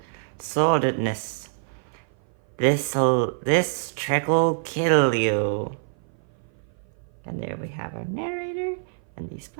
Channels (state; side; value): silent; left; 55 dB below the other